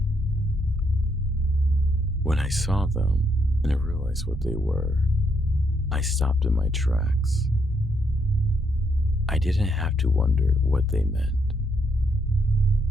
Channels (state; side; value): normal; both; correlation 0.75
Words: When I saw them and I realized what they were, I stopped in my tracks. I didn't have to wonder what they meant.